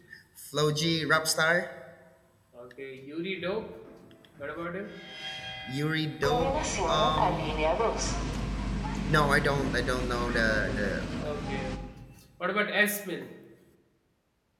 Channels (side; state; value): both; identical; correlation 1.00